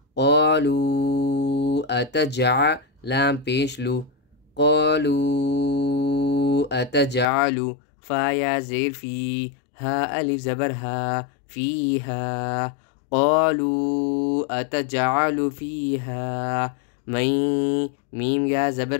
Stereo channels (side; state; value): right; drops out; at 7.2 s